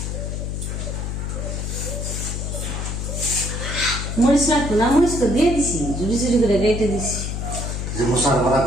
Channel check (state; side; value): noise; left; hum, 3 dB below the sound